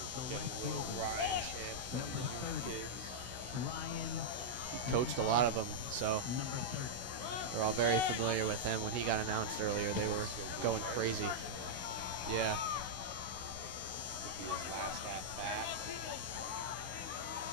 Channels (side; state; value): left; late; 16 ms